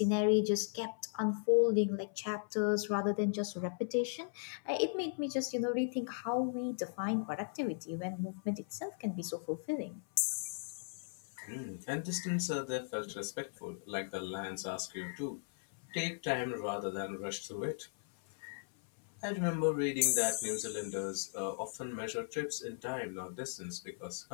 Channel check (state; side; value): silent; right; 53 dB below the other